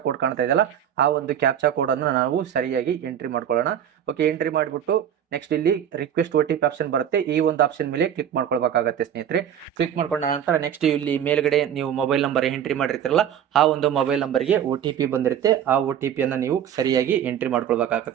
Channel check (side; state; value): left; quieter; 9.5 dB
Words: ಕೋಡ್ ಕಾಣ್ತಾ ಇದೆಯಲ್ಲ ಆ ಒಂದು ಕ್ಯಾಪ್ಚಾ ಕೋಡ್ ಅನ್ನು ನಾವು ಸರಿಯಾಗಿ ಎಂಟ್ರಿ ಮಾಡ್ಕೊಳ್ಳೋಣ. ಓಕೆ, ಎಂಟ್ರಿ ಮಾಡಿಬಿಟ್ಟು ನೆಕ್ಸ್ಟ್ ಇಲ್ಲಿ ರಿಕ್ವೆಸ್ಟ್ OTP ಆಪ್ಷನ್ ಬರುತ್ತೆ. ಈ ಒಂದು ಆಪ್ಷನ್ ಮೇಲೆ ಕ್ಲಿಕ್ ಮಾಡ್ಕೊಳ್ಬೇಕಾಗತ್ತೆ ಸ್ನೇಹಿತರೆ. ಕ್ಲಿಕ್ ಮಾಡ್ಕೊಂಡ ನಂತರ ನೆಕ್ಸ್ಟ್ ಇಲ್ಲಿ ಮೇಲ್ಗಡೆ ನೀವು ಮೊಬೈಲ್ ನಂಬರ್ ಎಂಟ್ರಿ ಮಾಡಿರ್ತೀರಲ್ಲ ಆ ಒಂದು ಮೊಬೈಲ್ ನಂಬರ್ಗೆ OTP ಬಂದಿರುತ್ತೆ. ಆ OTP ಅನ್ನ ನೀವು ಸರಿಯಾಗಿ ಎಂಟ್ರಿ